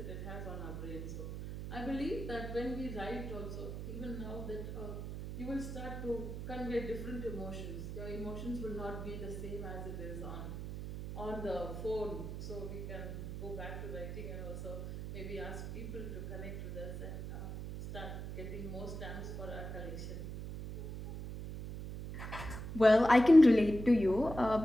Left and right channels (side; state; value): right; noise; hum, 7 dB below the sound